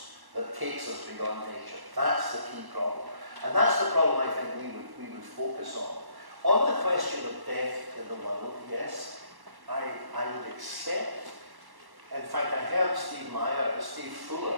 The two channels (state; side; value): late; left; 1.1 ms